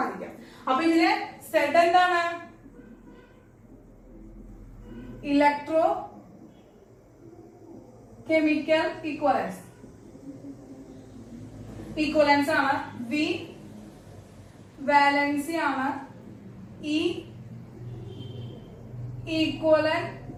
അപ്പൊ ഇതിലെ Z എന്താണ് ഇലക്ട്രോ കെമിക്കൽ ഈക്വലൻസ് ആണ്. V വാലൻസി ആണ്. E ഈക്വലന്റ്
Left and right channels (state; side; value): identical; both; correlation 1.00